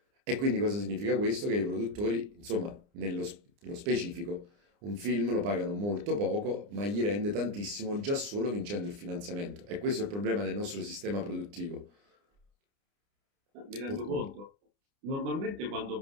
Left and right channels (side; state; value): left; late; 29 ms